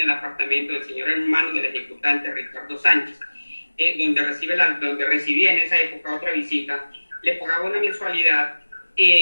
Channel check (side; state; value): both; inverted; correlation -1.00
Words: el apartamento del señor hermano del ejecutante Ricardo Sánchez, donde recibía en esa época otra visita, le pagaba una mensualidad